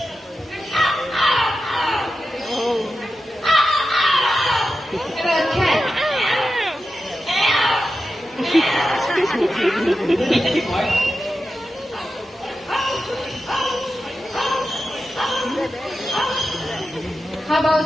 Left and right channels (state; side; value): normal; both; correlation 0.91